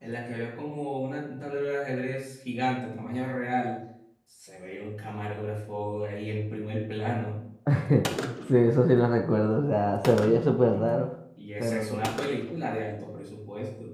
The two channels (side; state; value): both; identical; correlation 1.00